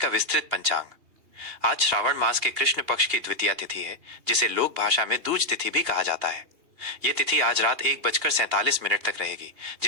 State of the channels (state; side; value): late; left; 2.8 ms